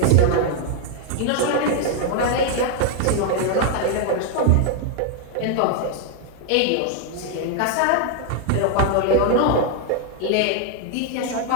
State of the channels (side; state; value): both; different; correlation 0.00